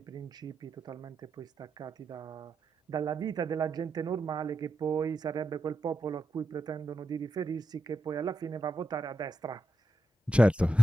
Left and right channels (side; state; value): both; normal; correlation 0.86